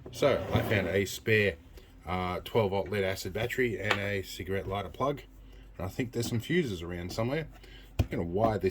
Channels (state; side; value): identical; both; correlation 1.00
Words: So I found a spare 12-volt lead acid battery and a cigarette lighter plug. And I think there's some fuses around somewhere. I'm going to wire